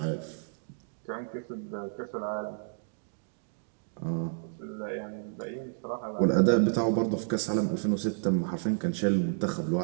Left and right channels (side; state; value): left; silent; digital silence